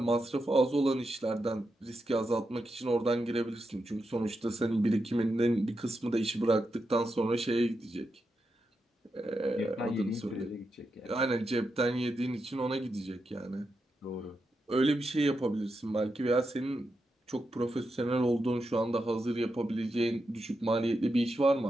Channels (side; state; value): both; normal; correlation 0.87